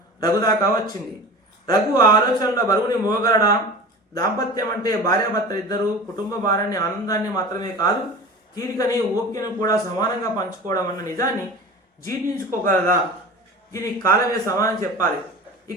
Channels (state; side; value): normal; both; correlation 0.35